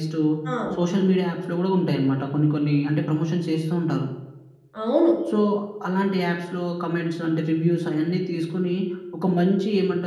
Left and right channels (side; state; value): both; identical; correlation 1.00